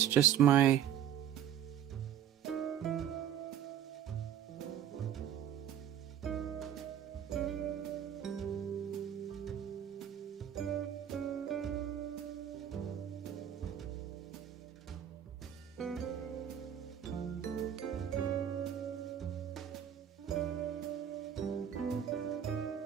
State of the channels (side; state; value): left; quieter; 9.7 dB